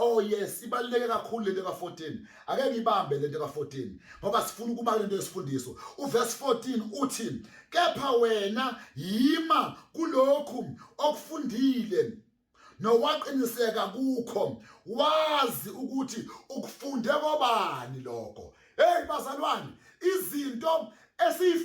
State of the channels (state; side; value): identical; both; correlation 1.00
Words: yes ibaluleke kakhulu lento ka14 ake ngibambe lento ka14 ngoba sifuna ukuba lento yesifundiso uverse 14 uthi kepha wena yima kulokhu okufundile nowaqiniseka kukho wazi ukuthi ukufunde kobani lokho hey bazalwane izinto